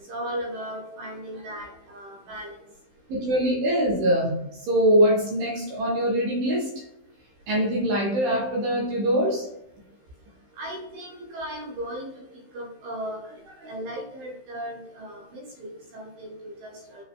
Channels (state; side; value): late; left; 15 ms